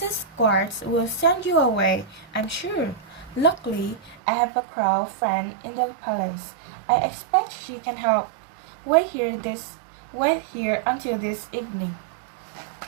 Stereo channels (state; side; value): drops out; left; at 4.2 s